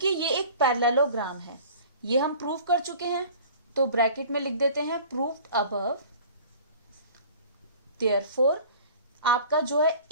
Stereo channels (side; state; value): both; inverted; correlation -0.45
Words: ये एक पैरेललोग्राम है, ये हम प्रूव कर चुके हैं, तो ब्रैकेट में लिख देते हैं प्रूव्ड अबव। देयरफॉर आपका जो है